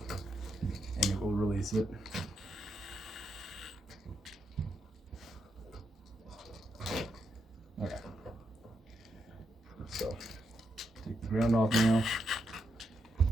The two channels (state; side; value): normal; both; correlation 0.82